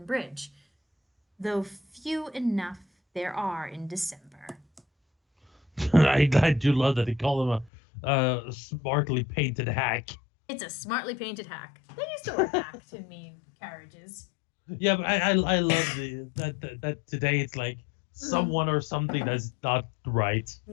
Bridge, though few enough there are in December. I do love that they call him a smartly painted hack. It's a smartly painted hack. They used to wear hack to mean carriages. Yeah, but I love that today it's like someone or something that's not right.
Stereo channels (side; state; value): right; drops out; at 7.7 s